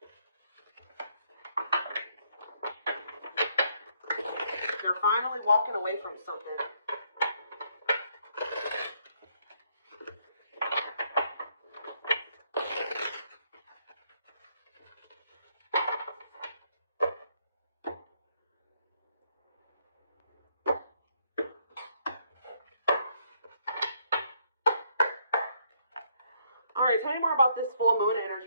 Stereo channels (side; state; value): both; inverted; correlation -0.71